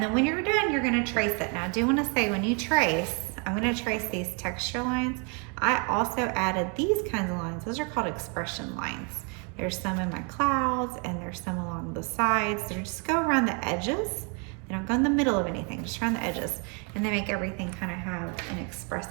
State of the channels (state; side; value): quieter; left; 35.8 dB